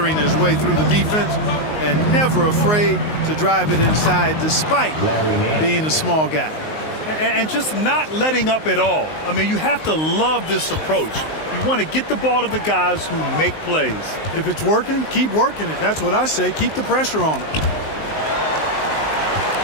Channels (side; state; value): right; late; 19 ms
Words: his way through the defense and never afraid to drive it inside despite being a small guy. And just not letting up at all. I mean, you have to love this approach. You want to get the ball to the guys who make plays. If it's working, keep working it. That's what I say. Keep the pressure on him.